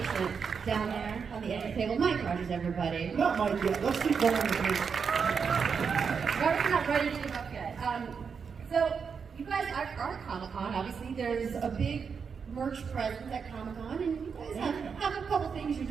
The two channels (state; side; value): quieter; left; 6.1 dB